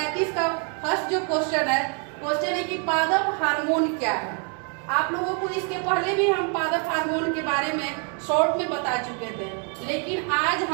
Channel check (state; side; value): quieter; left; 39.8 dB